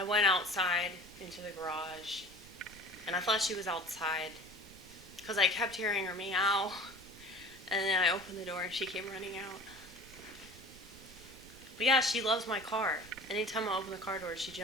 went outside into the garage, and I thought she was outside because I kept hearing her meow. And then I opened the door, and she came running out. But yeah, she loves my car. Anytime I open the car door, she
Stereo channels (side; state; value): right; noise; rumble, 22 dB below the sound